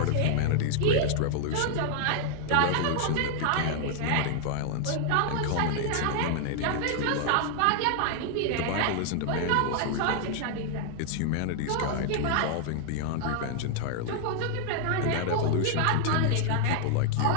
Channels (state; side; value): different; both; correlation 0.00